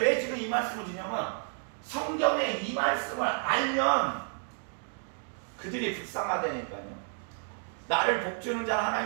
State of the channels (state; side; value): silent; left; 57 dB below the other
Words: 지금 이 말씀을 드냐면 성경에 이 말씀을 알면 그들이 불쌍하다니까요. 나를 복주는 자는